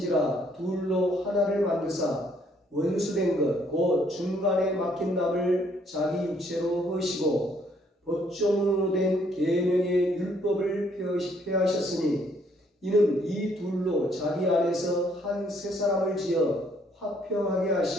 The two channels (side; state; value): both; normal; correlation 0.67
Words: 둘로 하나를 만드사 원수된 것 곧 중간에 막힌 남을 자기 육체로 허시고 법종으로 된 계명의 율법을 폐하셨으니 이는 이 둘로 자기 안에서 한 새 사람을 지어 화평하게